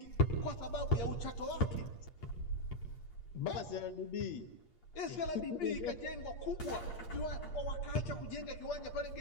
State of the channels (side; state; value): right; late; 8.5 ms